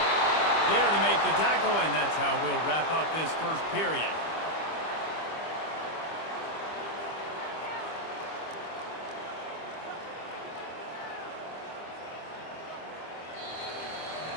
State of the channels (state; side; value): late; right; 25 ms